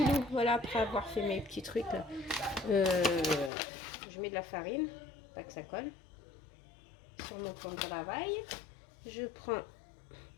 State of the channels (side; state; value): right; drops out; at 3.5 s